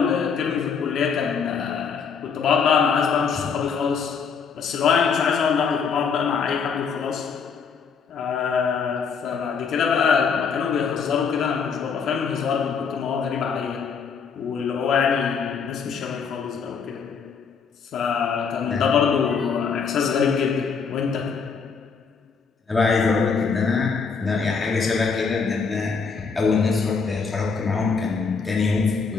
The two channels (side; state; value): right; quieter; 5.8 dB